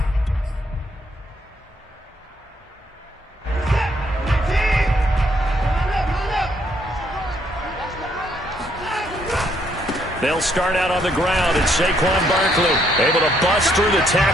They'll start out on the ground, and Saquon Barkley able to bust through the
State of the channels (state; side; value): normal; both; correlation 0.71